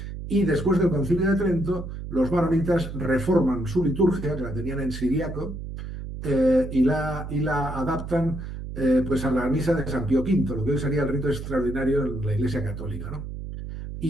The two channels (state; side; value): noise; right; hum, 8 dB below the sound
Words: Y después del Concilio de Trento, los maronitas reforman su liturgia, que la tenían en siriaco, y la adaptan pues a la misa de San Pío V, lo que hoy sería el rito extraordinario en la Iglesia Católica, ¿no?